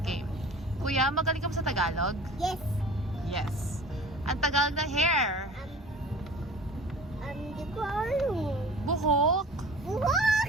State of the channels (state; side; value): normal; both; correlation 0.43